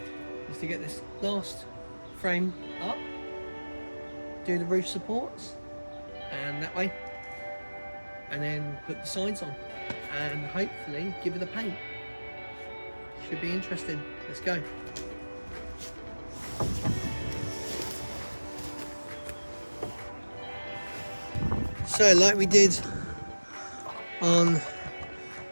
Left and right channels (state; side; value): inverted; both; correlation -1.00